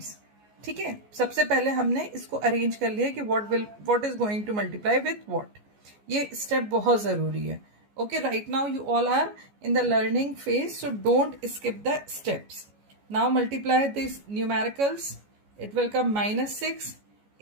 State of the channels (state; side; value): late; left; 14 ms